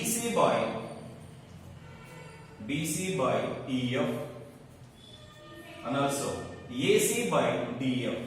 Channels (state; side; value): identical; both; correlation 1.00